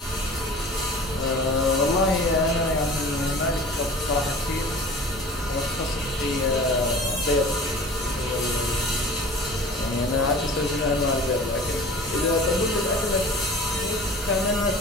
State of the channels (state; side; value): normal; both; correlation 0.42